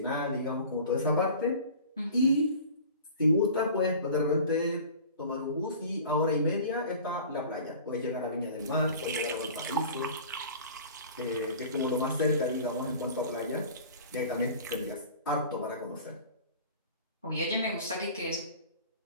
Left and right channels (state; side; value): inverted; both; correlation -0.42